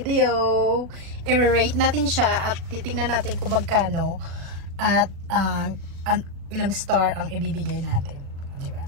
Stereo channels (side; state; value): left; late; 36 ms